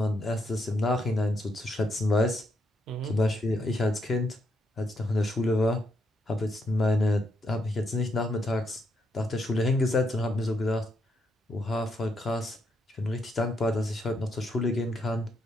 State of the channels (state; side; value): normal; both; correlation 0.78